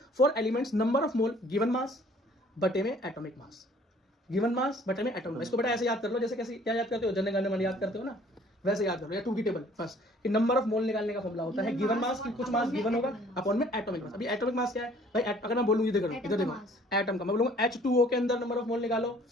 For elements number of mole given mass बटे में एटॉमिक मास। गिवन मास बटे में एटॉमिक मास। इसको बेटा ऐसे याद कर लो, जैसे कैसे क्या याद करते हो? जनगण मन याद करते हो ना, वैसे याद करो। या 2 की टेबल फर्स्ट कि नंबर ऑफ मोल निकालने का फॉर्मूला होता है गिवन मास की कुछ मास गिवन होगा अपॉन में एटॉमिक मास। अभी एटॉमिक मास क्या है भाई? अगर मैं बोलूं इधर देखो, इधर देखो एटम का, मैं बोलूंगा H2O के अंदर नंबर ऑफ मोल निकालो,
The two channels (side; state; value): both; normal; correlation 0.56